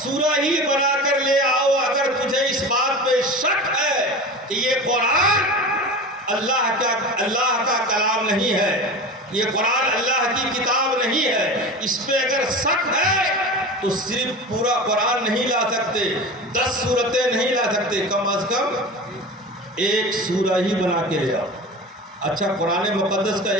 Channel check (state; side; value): normal; both; correlation 0.31